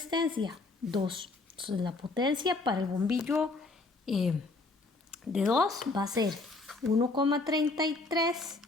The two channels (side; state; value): right; quieter; 3.4 dB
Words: 2. Entonces, la potencia para el bombillo de 2 va a ser 1,33